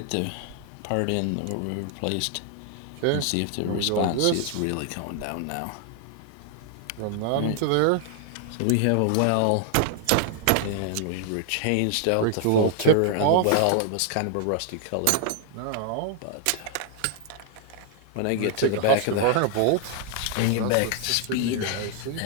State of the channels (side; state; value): both; different; correlation 0.00